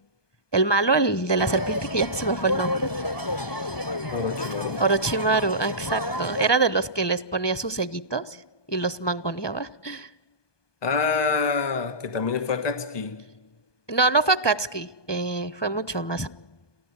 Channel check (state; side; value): late; right; 1.2 ms